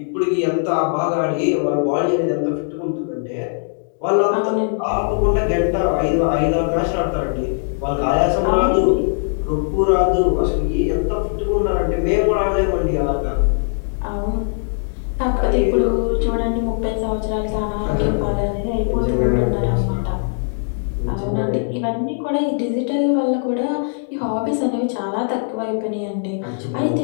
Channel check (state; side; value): silent; right; 65 dB below the other